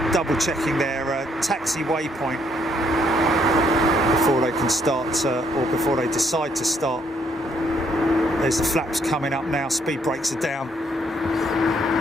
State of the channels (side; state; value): both; normal; correlation 0.70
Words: double checking their taxi waypoint before they can start or before they decide to start. There's the flaps coming up now, speed brakes are down.